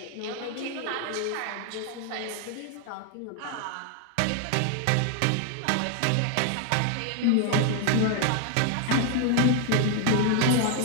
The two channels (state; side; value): different; both; correlation 0.00